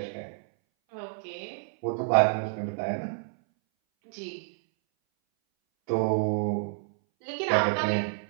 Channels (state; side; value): silent; left; 59 dB below the other